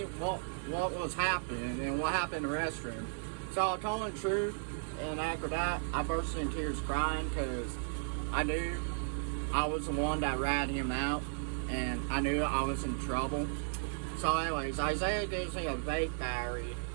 what was happening and what happened in the restroom. So I told him the truth, and after that, I burst into tears crying because I knew I was the one that ratted him out, and I knew I was in trouble. So anyways, Isaiah gives me a vape battery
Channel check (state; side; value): silent; left; digital silence